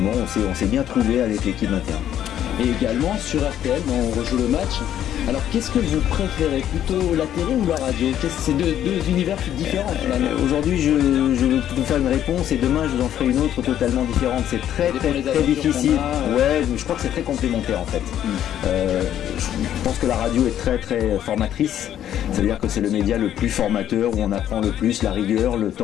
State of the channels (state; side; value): quieter; right; 10.9 dB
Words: on s'est bien trouvé avec l'équipe 21. Et également sur RTL, on rejoue le match. Alors qu'est-ce que vous préférez, plutôt la télé ou la radio? C'est deux univers différents finalement. Aujourd'hui je vais vous faire une réponse et demain je vous en ferai une autre totalement différente. C'est très difficile. Je crois que c'est très complémentaire en fait. Je pense que la radio est très formatrice. C'est-à-dire que c'est le média le plus formateur, où on apprend le plus la rigueur, le